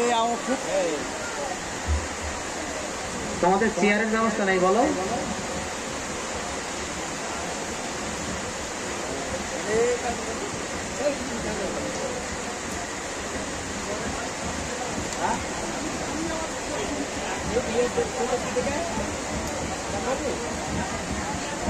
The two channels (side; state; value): both; identical; correlation 1.00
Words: আউটপুট তোমাদের চেয়ারের ব্যবস্থা নেই বলো?